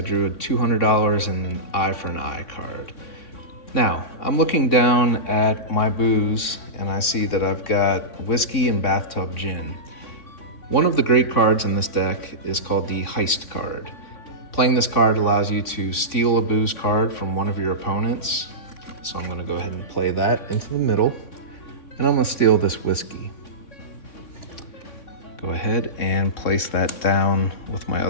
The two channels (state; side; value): late; right; 3.6 ms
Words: drew a $200 and an eye for an eye card. Now, I'm looking down at my booze and I see that I've got whiskey and bathtub gin. One of the great cards in this deck is called the heist card. Playing this card allows you to steal a booze card from one of your opponents. So I'm gonna go ahead and play that into the middle. And I'm gonna steal this whiskey. Go ahead and place that down with my